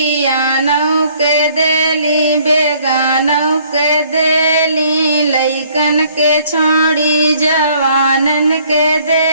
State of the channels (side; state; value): both; inverted; correlation -0.60